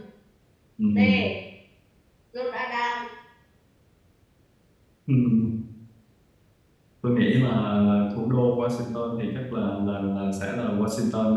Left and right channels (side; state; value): both; identical; correlation 1.00